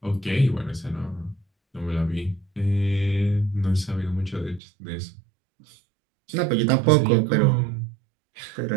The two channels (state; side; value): drops out; left; at 4.6 s